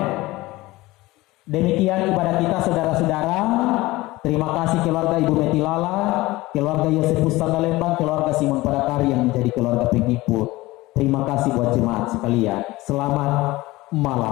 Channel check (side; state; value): right; quieter; 19.6 dB